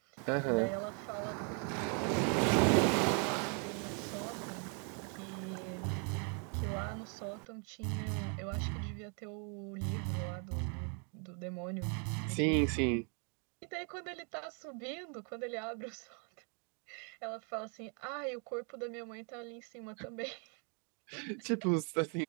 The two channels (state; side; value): quieter; left; 39.4 dB